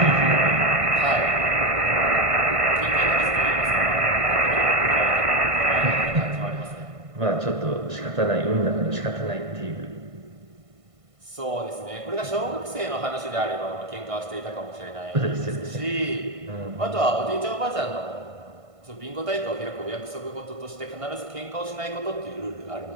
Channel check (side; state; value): left; late; 1.5 ms